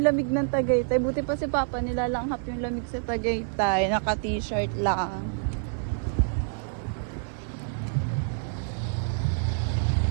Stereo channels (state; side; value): silent; left; digital silence